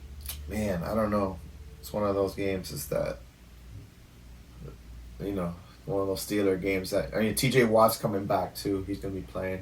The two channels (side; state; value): both; identical; correlation 1.00